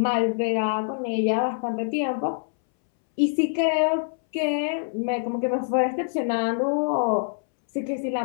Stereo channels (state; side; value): silent; right; 62 dB below the other